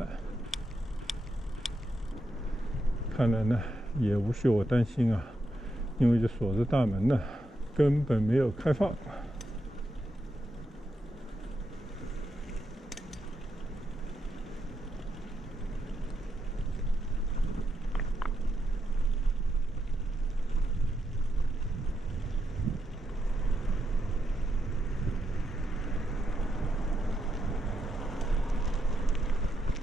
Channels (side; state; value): both; normal; correlation 0.83